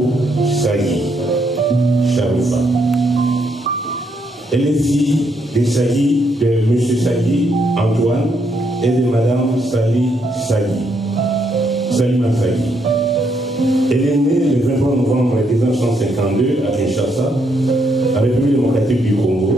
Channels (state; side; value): normal; both; correlation 0.75